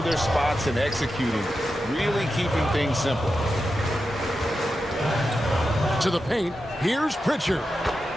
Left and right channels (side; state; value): both; normal; correlation 0.90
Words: their spots and executing, really keeping things simple. To the paint, here's Pritchard.